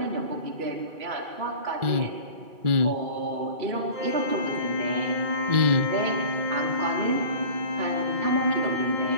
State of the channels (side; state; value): left; late; 2.3 ms